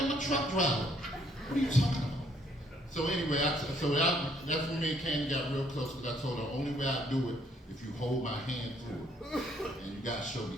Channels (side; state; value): both; normal; correlation 0.67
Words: a truck driver. What are you talking about? So anyway, that's when me and Candy got real close, because I told her the only way I do it if you hold my hand through it. And you gotta show